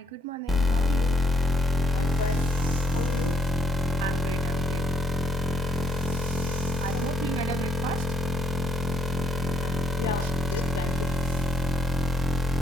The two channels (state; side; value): normal; both; correlation 0.71